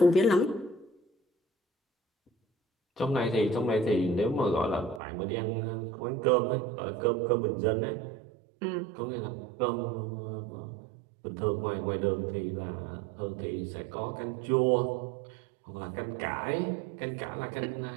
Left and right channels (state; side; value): drops out; left; at 5.0 s